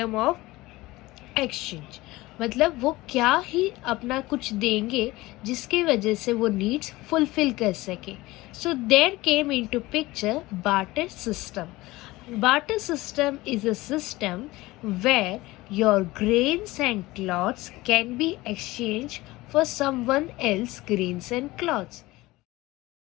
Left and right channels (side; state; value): right; quieter; 19.6 dB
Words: of exchange? मतलब वो क्या ही अपना कुछ देंगे जिसकी वजह से वो नीड्स फुलफिल कर सके. So there came into picture barter system. Barter system is a system where your grains and cloths can be exchanged for someone else grains and cloths.